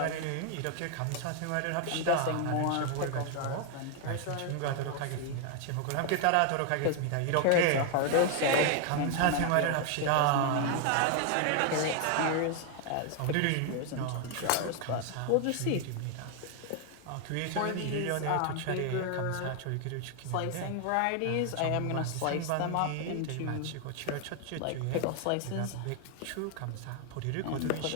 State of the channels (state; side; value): different; both; correlation 0.00